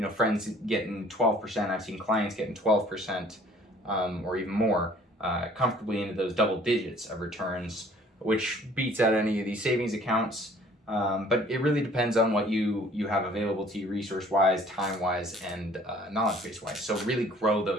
friends getting 12%, I've seen clients getting 12% or even more, comfortably into those double digits of returns, which beats out any of these savings accounts. But it really depends on what you have available to you resource-wise, time-wise, and knowledge base-wise. So really grow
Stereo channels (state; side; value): normal; both; correlation 0.54